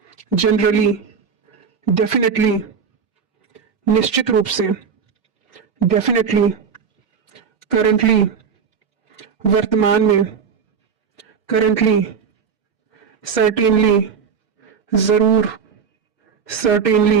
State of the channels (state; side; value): quieter; left; 6.4 dB